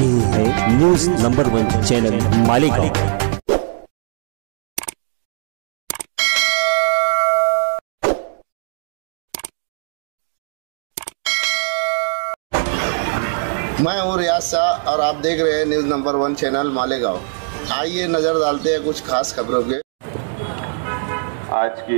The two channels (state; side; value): silent; left; digital silence